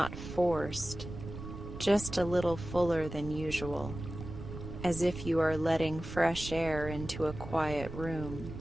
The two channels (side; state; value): right; noise; rumble, 10 dB below the sound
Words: forced, just a little fuller than usual, as if you are letting fresh air into a quiet room.